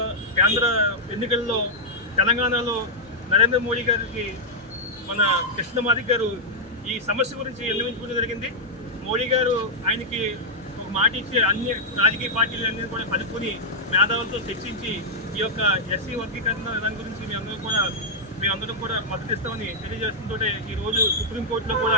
కేంద్ర ఎన్నికల్లో తెలంగాణలో నరేంద్ర మోడీ గారికి మన కృష్ణమాది గారు ఈ సమస్య గురించి విన్నవించుకోవడం జరిగింది. మోడీ గారు ఆయనకి ఒక మాట ఇచ్చి అన్ని రాజకీయ పార్టీలన్నీ కూడా కలుపుకొని మేధావులతో చర్చించి ఈ యొక్క ఎస్సీ వర్గీకరణ దాని గురించి మేమందరం కూడా మద్దతు ఇస్తామని తెలియజేస్తుంటే ఈరోజు సుప్రీంకోర్టులో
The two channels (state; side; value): normal; both; correlation -0.06